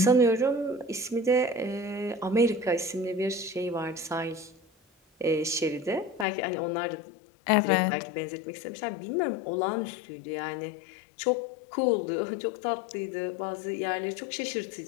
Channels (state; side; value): drops out; right; at 6.2 s